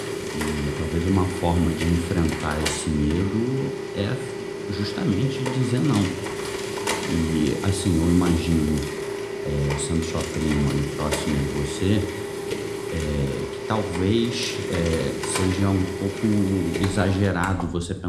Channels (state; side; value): identical; both; correlation 1.00